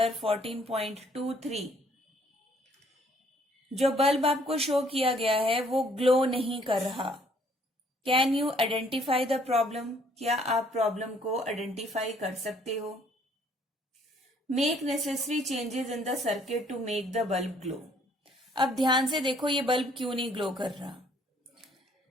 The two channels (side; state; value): both; normal; correlation 0.62